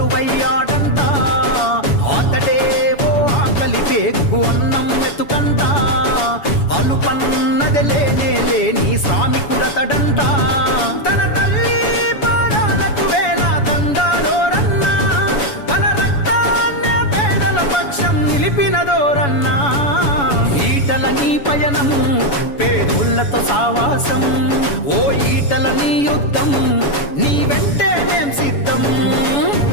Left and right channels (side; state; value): right; late; 7.1 ms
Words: అతడే ఓ ఆకలి పేగు అన్నం మెతుకంట, అలుపన్నది లేనే లేని శ్రామికుడతడంట. తన తల్లి పాదాలకు వేల దండాలోరన్నా, తన రక్తాన్నే పేదల పక్షం నిలిపినదోరన్నా. ఈటల నీ పయనం పేదోళ్లతో సావాసం, ఓ ఈటల నీ యుద్ధం నీ వెంటే మేం సిద్ధం.